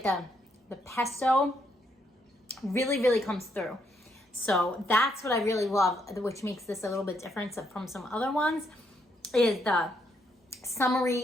the pesto. Really, really comes through. So that's what I really love, which makes this a little bit different from some other ones, is the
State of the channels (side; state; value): both; normal; correlation 0.75